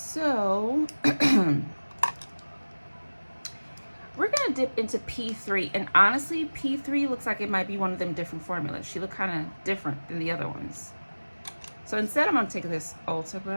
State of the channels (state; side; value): inverted; both; correlation -1.00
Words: we're gonna dip into P3, and honestly, P3 looks like it might be one of them different formulas. She looked kind of different than the other ones. So instead, I'm gonna take this Ulta